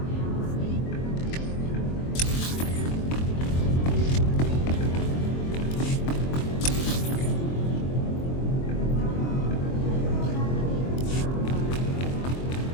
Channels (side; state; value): right; late; 23 ms